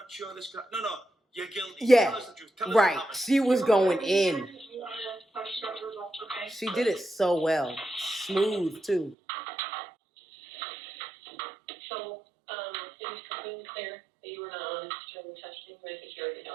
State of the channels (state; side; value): drops out; left; at 9.2 s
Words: sure this guy. No, you're guilty. Yeah, Tell us the truth. Tell us right. what happened. She was going in. She did it so well. Smooth, too. So, it was completely clear that you were not honest during the testing, but I think you already